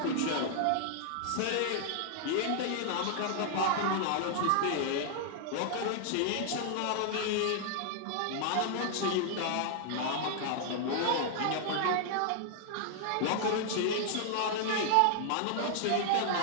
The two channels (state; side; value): different; both; correlation -0.01